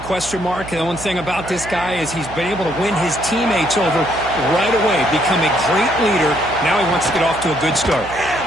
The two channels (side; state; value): right; noise; hum, 14 dB below the sound